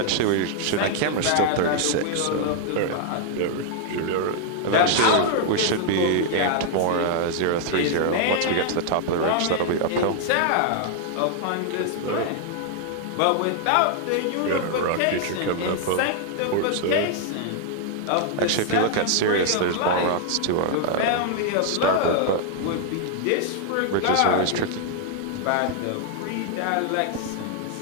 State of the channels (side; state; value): both; different; correlation 0.00